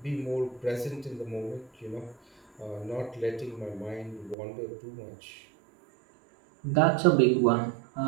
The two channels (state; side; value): drops out; left; at 4.4 s